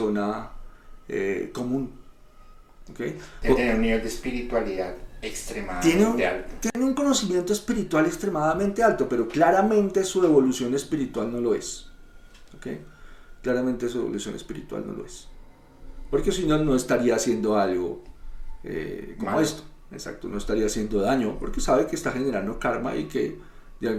común. ¿Okay? Debe tener un nivel de espiritualidad extremadamente alto. Tiene un conocimiento espiritual extremadamente alto, pero claramente su evolución espiritual no lo es. ¿Okay? Claramente su evolución espiritual no lo es. Porque si no, no estaría haciendo algo como esto. Exacto, no estaría haciendo daño porque sabe que está generando karma y que de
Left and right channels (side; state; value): both; identical; correlation 1.00